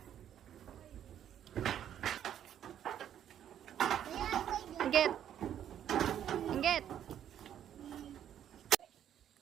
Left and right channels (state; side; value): quieter; left; 10.2 dB